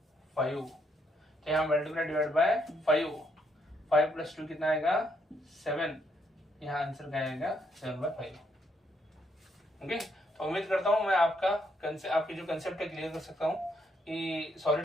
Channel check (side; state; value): both; normal; correlation 0.73